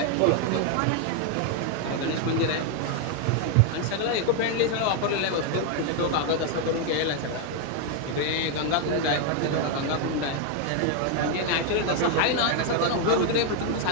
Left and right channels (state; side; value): different; both; correlation 0.00